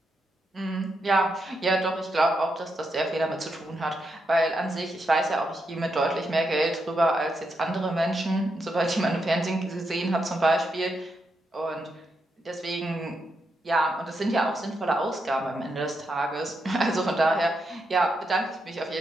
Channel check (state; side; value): normal; both; correlation 0.83